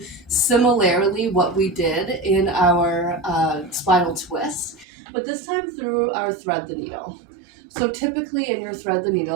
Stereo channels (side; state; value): left; drops out; at 4.9 s